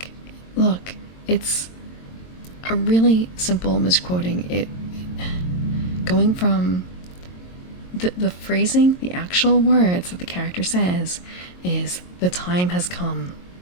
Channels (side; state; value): right; late; 22 ms